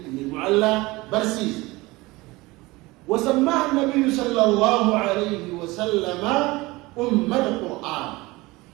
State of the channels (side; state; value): left; quieter; 21.7 dB